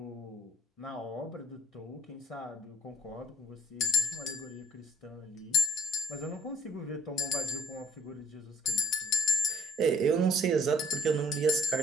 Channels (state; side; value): normal; both; correlation 0.62